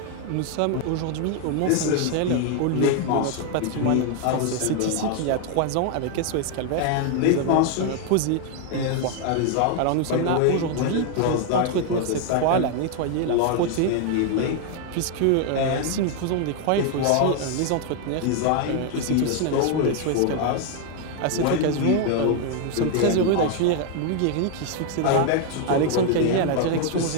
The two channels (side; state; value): both; different; correlation 0.00